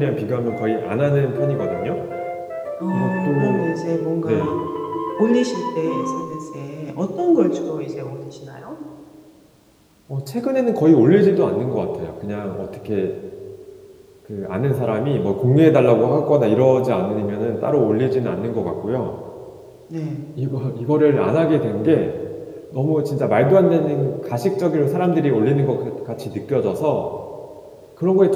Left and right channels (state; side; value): identical; both; correlation 1.00